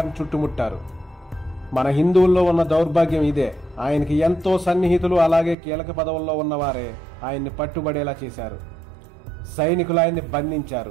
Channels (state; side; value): drops out; left; at 5.6 s